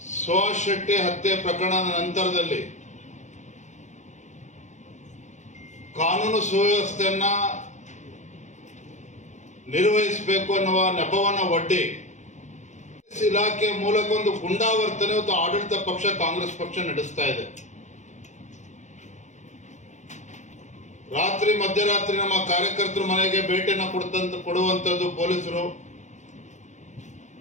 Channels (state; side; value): late; right; 0.35 ms